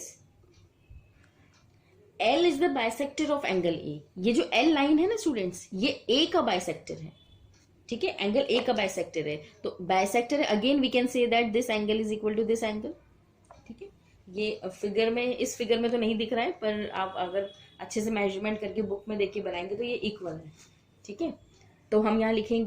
L is the bisector of angle A. ये जो L लाइन है ना स्टूडेंट्स, ये A का बाइसेक्टर है. ठीक है, एंगल A का बाइसेक्टर है. तो बाइसेक्टर है, again we can say that this angle is equal to this angle. ठीक है, ये फिगर में, इस फिगर में तो नहीं दिख रहा है, पर आप अगर अच्छे से मेजरमेंट करके बुक में देख के बनाएंगे तो ये इक्वल है. ठीक है, तो हम यहां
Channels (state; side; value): identical; both; correlation 1.00